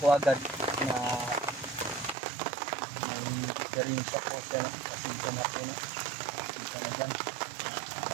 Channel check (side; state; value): left; drops out; at 2.1 s